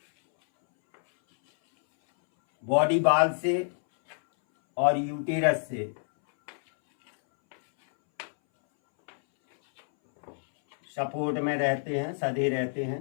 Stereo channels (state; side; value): silent; right; 60 dB below the other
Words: बॉडी बाल से और यूटेरस से सपोर्ट में रहते हैं, सधे रहते हैं।